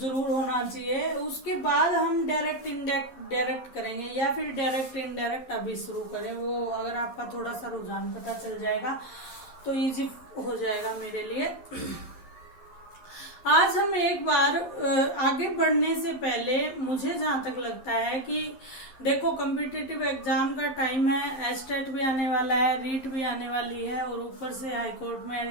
जरूर होना चाहिए। उसके बाद हम डायरेक्ट डायरेक्ट करेंगे या फिर डायरेक्ट इनडायरेक्ट अभी शुरू करें। वो अगर आपका थोड़ा सा रुझान पता चल जाएगा तो इजी हो जाएगा मेरे लिए। आज हम एक बार आगे बढ़ने से पहले मुझे जहां तक लगता है कि देखो, कॉम्पिटिटिव एग्जाम का टाइम है, एस्टेट भी आने वाला है, रीट भी आने वाली है और ऊपर से हाई कोर्ट में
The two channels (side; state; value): right; late; 11 ms